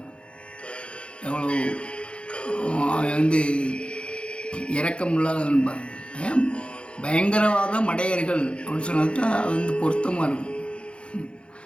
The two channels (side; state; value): right; late; 0.057 ms